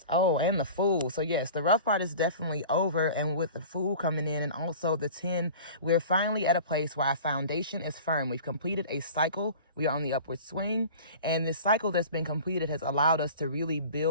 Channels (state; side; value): inverted; both; correlation -0.40